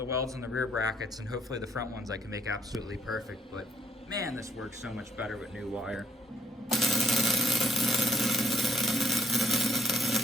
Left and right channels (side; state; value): both; normal; correlation 0.68